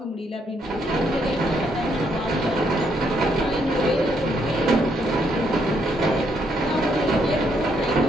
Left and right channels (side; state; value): both; normal; correlation 0.74